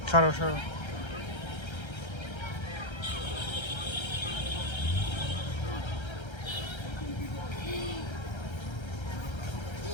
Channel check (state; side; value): late; right; 1.3 ms